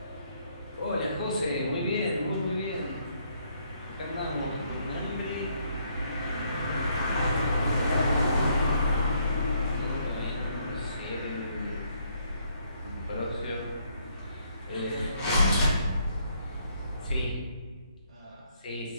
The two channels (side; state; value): both; inverted; correlation -0.70